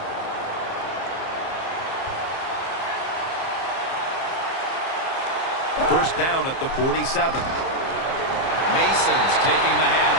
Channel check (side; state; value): right; late; 30 ms